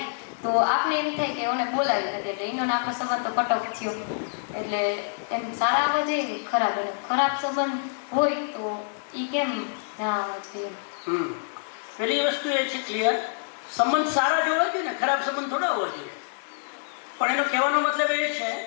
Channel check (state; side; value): silent; right; digital silence